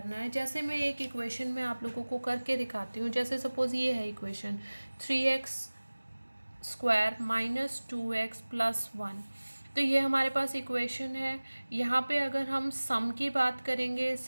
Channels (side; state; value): both; inverted; correlation -1.00